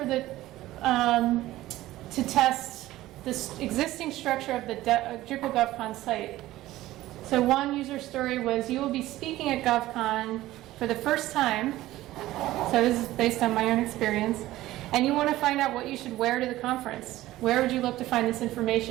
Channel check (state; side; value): quieter; left; 16.0 dB